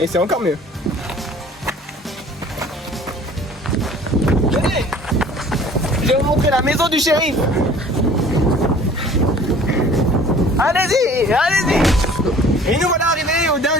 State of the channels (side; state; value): both; normal; correlation 0.49